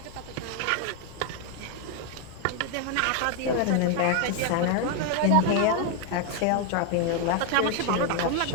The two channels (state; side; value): different; both; correlation 0.01